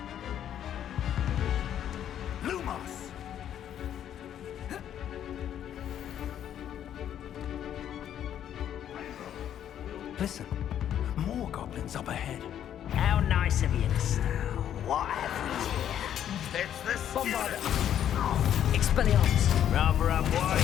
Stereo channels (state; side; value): quieter; right; 10.2 dB